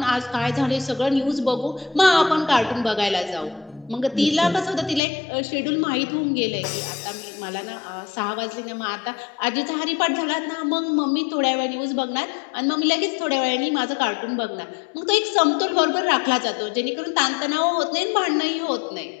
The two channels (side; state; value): right; drops out; at 5.0 s